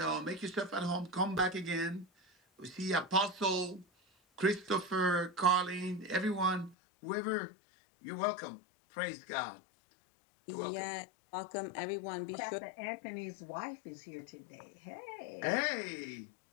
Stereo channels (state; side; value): drops out; right; at 6.8 s